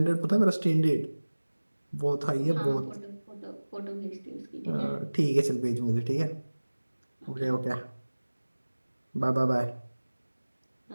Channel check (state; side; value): inverted; both; correlation -1.00